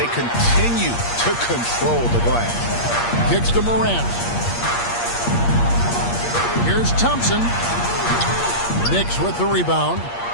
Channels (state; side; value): late; right; 8.5 ms